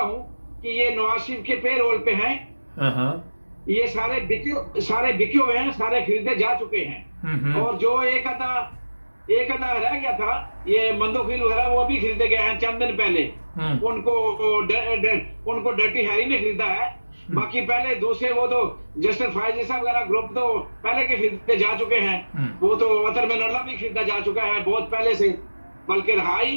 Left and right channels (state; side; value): inverted; both; correlation -1.00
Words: हूं कि ये नवाज शरीफ के पे रोल पे हैं। हाँ। ये सारे बिके हुए हैं, सारे खरीदे जा चुके हैं। और जो एक आधा रह गया था, ये मंदोखिल वगैरह, वो भी खरीदे गए हैं चंद दिन पहले। उनको डर्टी हैरी ने खरीदा है। बाकी पहले दूसरे वो तो जस्टिस फायजी साहब वगैरह ग्रुप तो पहले के खरीदे जा चुके हैं। वो तो अतर मिनल्ला भी खरीदा जा चुका है बहुत पहले से, बल्कि